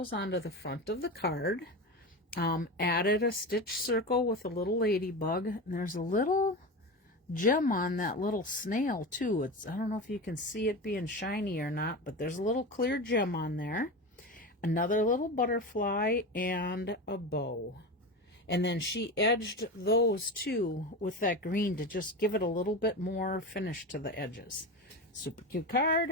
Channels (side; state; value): both; normal; correlation 0.24